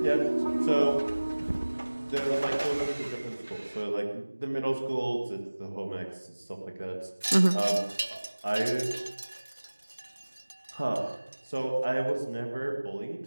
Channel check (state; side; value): inverted; both; correlation -1.00